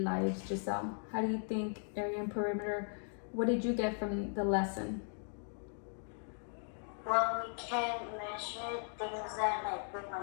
lives, Giselle? How do you think area and perimeter, what did you get from the lesson? Well, we can measure things that like we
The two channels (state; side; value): silent; right; 53 dB below the other